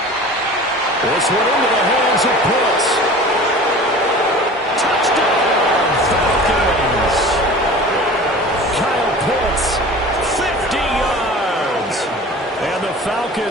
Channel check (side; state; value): both; normal; correlation 0.39